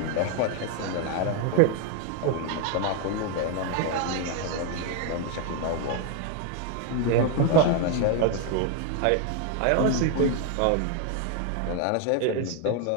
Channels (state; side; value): different; both; correlation 0.01